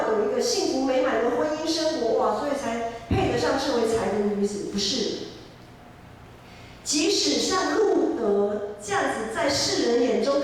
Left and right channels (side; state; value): both; identical; correlation 1.00